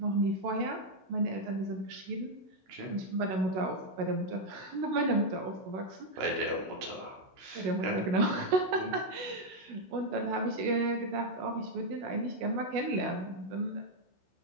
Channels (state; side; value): late; left; 16 ms